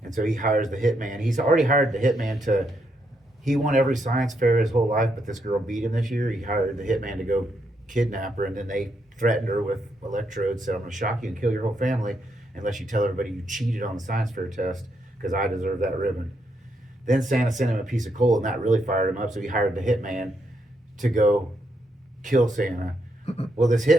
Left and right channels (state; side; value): normal; both; correlation 0.78